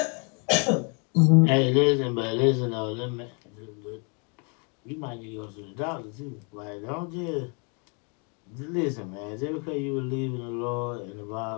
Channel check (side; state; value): right; quieter; 35.7 dB